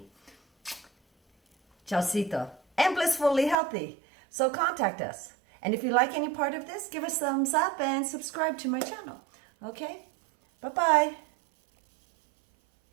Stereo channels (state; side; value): drops out; left; at 3.6 s